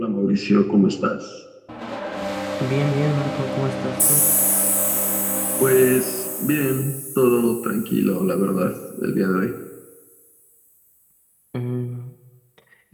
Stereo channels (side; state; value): both; identical; correlation 1.00